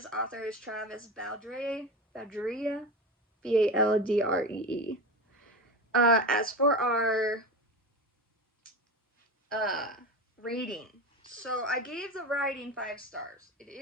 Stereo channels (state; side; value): normal; both; correlation 0.26